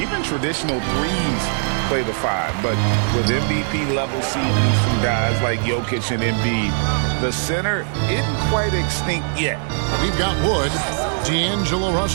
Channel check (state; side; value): silent; left; digital silence